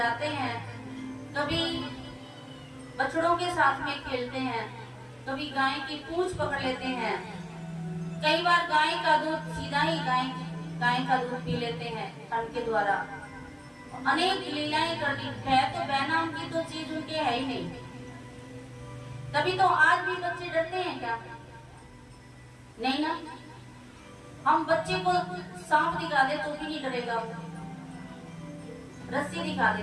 हैं, कभी बछड़ों के साथ में खेलते हैं, कभी गाय की पूंछ पकड़ लेते हैं, कई बार गाय का दूध सीधा ही गाय का दूध पी लेते हैं ठंड के द्वारा। अनेक लीलाएं कर दी है, तो बहनाम की तो चीज उनके है ही नहीं। तभी तो आज भी बच्चे डरते हैं क्या? नहीं ना। हम बच्चे को सांप दिखा दे तो भी नहीं डरेगा, रस्सी दिखा दे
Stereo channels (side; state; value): both; identical; correlation 1.00